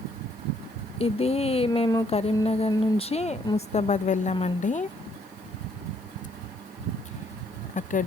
ఇది మేము కరీంనగర్ నుంచి ముస్తాబాద్ వెళ్ళామండి. అక్కడ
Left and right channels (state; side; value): noise; left; hiss, 29 dB below the sound